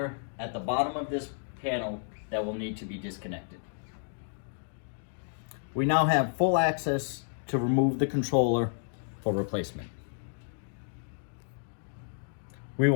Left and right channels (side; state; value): right; silent; digital silence